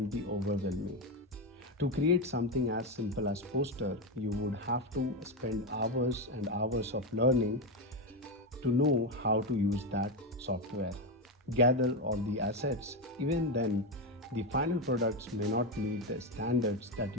be overwhelming. To create something as simple as poster, you would have to spend hours and hours of learning to know how to use that software. Gather all the assets. Even then, the final products may not meet the standards that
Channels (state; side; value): normal; both; correlation 0.10